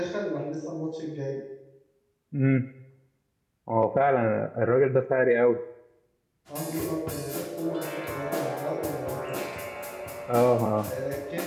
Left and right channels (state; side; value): identical; both; correlation 1.00